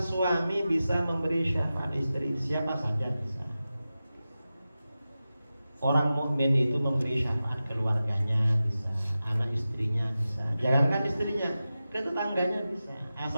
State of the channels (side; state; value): both; inverted; correlation -0.94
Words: bisa memberi syafaat istri? Siapa saja bisa. Orang mukmin itu memberi syafaat keluarganya bisa, anak istrinya bisa, jangankan istrinya, ke tetangganya bisa,